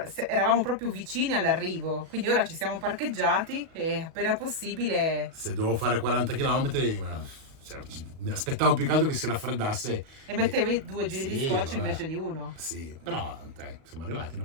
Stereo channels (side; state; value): left; late; 37 ms